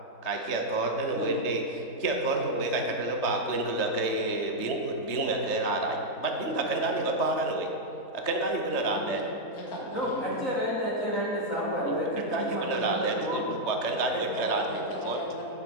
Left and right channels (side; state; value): right; late; 3.3 ms